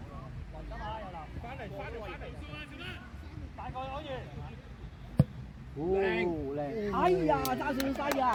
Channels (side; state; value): both; identical; correlation 1.00